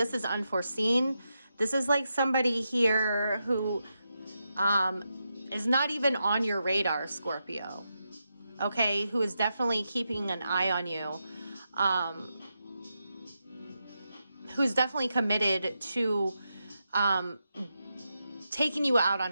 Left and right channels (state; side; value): inverted; both; correlation -0.86